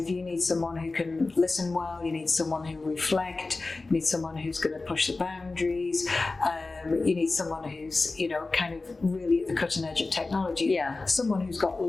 of, you need someone who can listen well, you need someone who reflect, you need someone who's going to push the boundaries, you need someone who's, you know, kind of really at the cutting edge of technology. Someone who's got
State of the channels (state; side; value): quieter; right; 3.5 dB